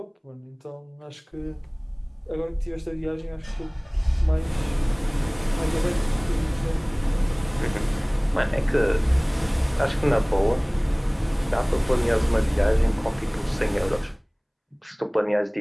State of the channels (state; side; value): identical; both; correlation 1.00